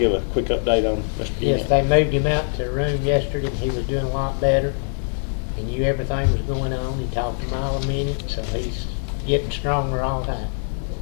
a quick update on Mr. Yant? Yes, they moved him out to the room yesterday, and he was doing a lot better. He knew everything was going on. He talked a mile a minute, so he's getting stronger all the time.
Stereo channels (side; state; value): right; silent; 64 dB below the other